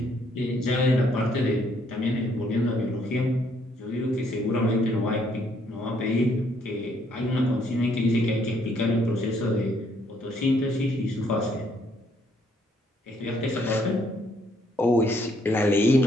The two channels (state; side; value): normal; both; correlation 0.68